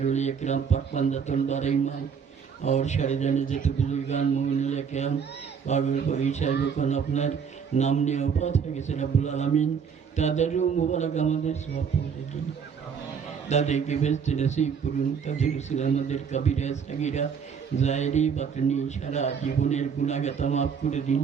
उलिया किराम पाकबंदतुल बारईमान और शरीदाने जितने बुजुर्गान मोमिनुल किराम पागल को ईशा যখন আপনার নাম নিয়ে ওফাত হয়ে গেছে রব্বুল আলামিন তাদেরও মুবারক আমাদের সওয়াব পৌঁছে দিন তাদেরকে বেহেশতে নসিব করুন তাদের রসুল আমাদের কবিরা সাগীরা জায়েরি বাতনি সারা জীবনের গুনাহগাতা মাফ করে দিন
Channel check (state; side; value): quieter; left; 6.7 dB